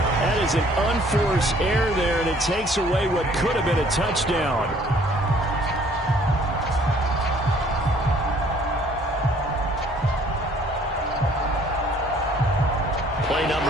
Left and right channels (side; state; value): both; normal; correlation 0.58